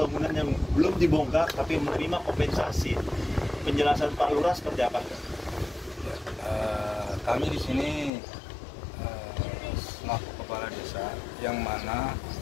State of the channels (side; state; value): right; drops out; at 8.1 s